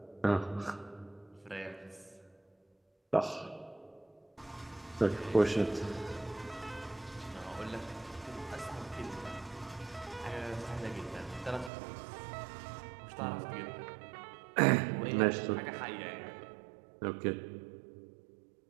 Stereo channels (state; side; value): drops out; left; at 11.7 s